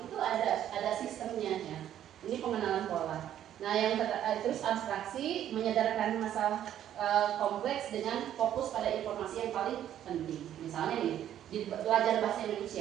Itu ada sistemnya ya. Ini pengenalan pola. Nah, yang terus abstraksi, menyadarkan masalah kompleks dengan fokus pada informasi yang paling penting. Misalnya nih, di belajar bahasa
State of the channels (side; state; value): left; quieter; 11.0 dB